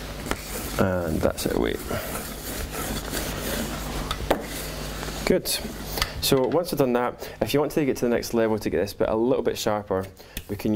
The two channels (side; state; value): both; identical; correlation 1.00